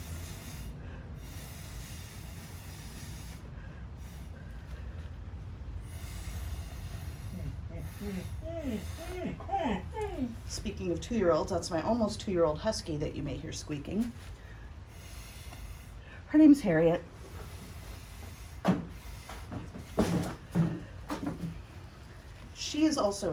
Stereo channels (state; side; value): identical; both; correlation 1.00